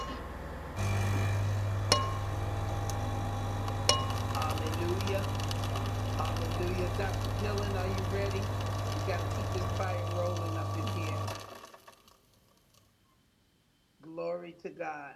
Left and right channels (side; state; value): both; identical; correlation 1.00